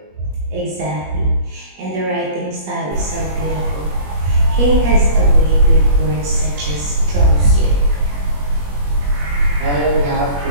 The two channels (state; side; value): late; left; 21 ms